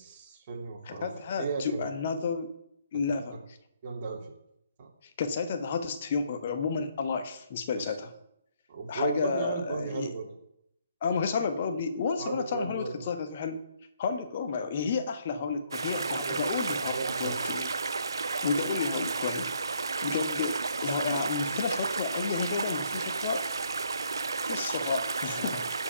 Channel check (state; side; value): inverted; both; correlation -0.68